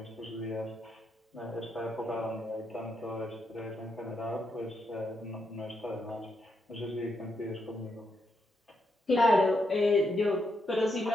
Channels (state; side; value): normal; both; correlation 0.81